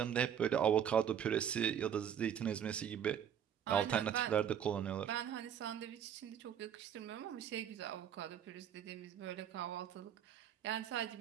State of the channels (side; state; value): left; quieter; 8.9 dB